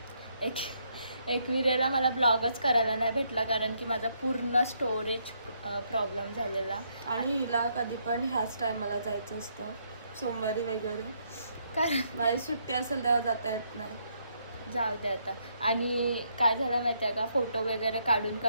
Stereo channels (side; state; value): both; inverted; correlation -0.74